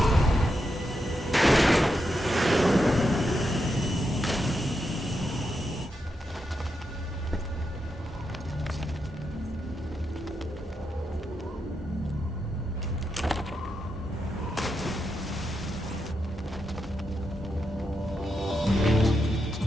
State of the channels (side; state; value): both; normal; correlation 0.85